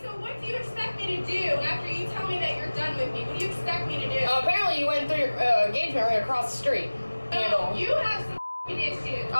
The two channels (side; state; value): both; inverted; correlation -1.00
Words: so what do you expect me to do after you tell me that you're done with me? What do you expect me to do? Apparently you went through your engagement ring across the street. No, you have some issues.